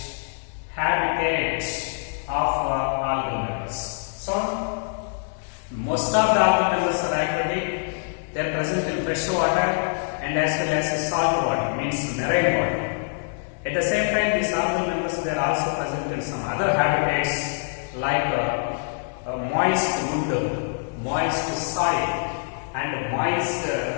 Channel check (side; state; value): right; silent; digital silence